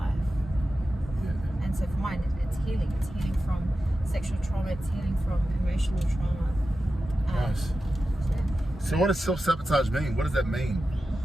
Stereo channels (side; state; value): both; normal; correlation 0.92